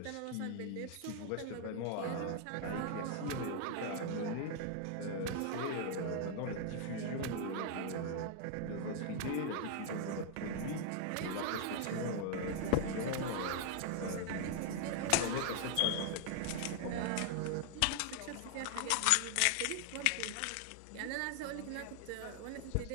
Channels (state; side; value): different; both; correlation 0.00